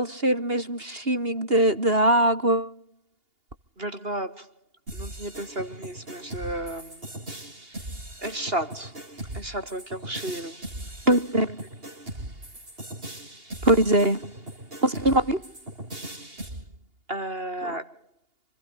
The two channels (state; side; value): late; left; 2.8 ms